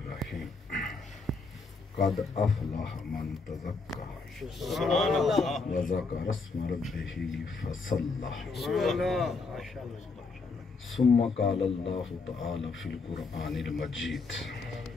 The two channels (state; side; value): quieter; right; 4.1 dB